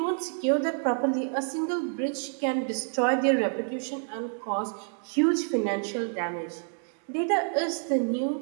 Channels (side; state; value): left; silent; 59 dB below the other